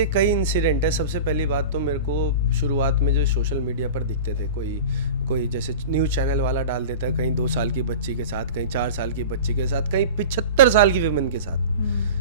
कई इंसिडेंट है। सबसे पहली बात तो मेरे को शुरुआत में जो सोशल मीडिया पर दिखते थे, कोई जैसे न्यूज़ चैनल वाला डाल देता है, कहीं 2 साल की बच्ची के साथ, कहीं 4 साल की बच्ची के साथ, कहीं 75 साल की विमेन के साथ।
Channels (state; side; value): inverted; both; correlation -0.33